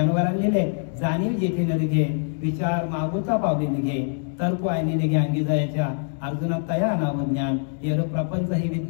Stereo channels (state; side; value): silent; right; 62 dB below the other